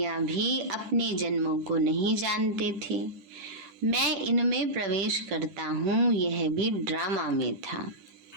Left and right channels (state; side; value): late; left; 10 ms